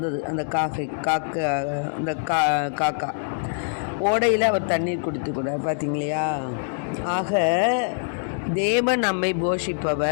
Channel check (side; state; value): right; silent; digital silence